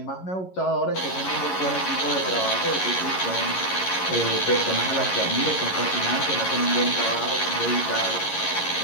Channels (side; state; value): right; late; 11 ms